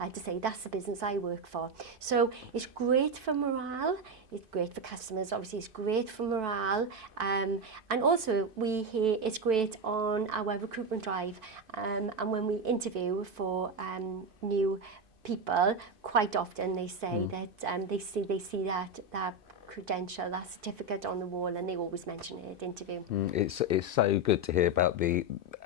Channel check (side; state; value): left; late; 2.6 ms